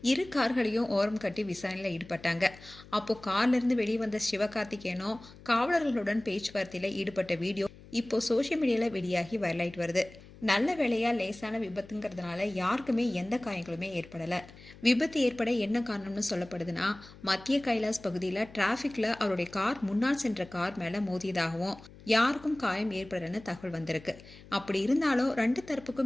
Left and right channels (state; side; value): noise; left; hum, 20 dB below the sound